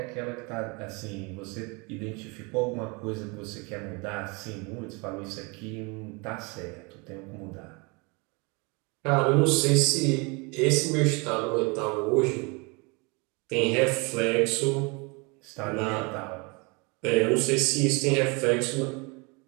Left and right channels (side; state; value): left; quieter; 29.4 dB